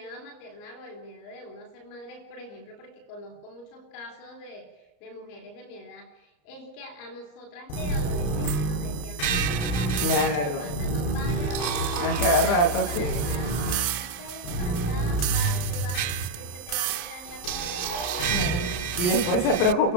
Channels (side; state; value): right; late; 33 ms